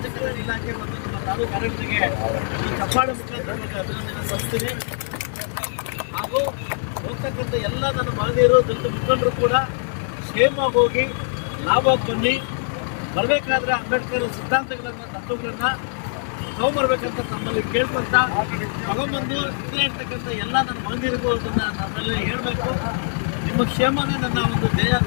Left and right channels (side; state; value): right; silent; 58 dB below the other